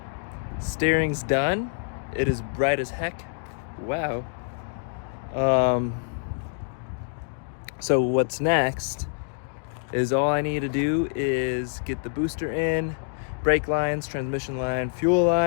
Steering's done. It is bright as heck. Wow. So what's next is all I need to do is get the booster in, brake lines, transmission line, fuel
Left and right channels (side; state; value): right; silent; digital silence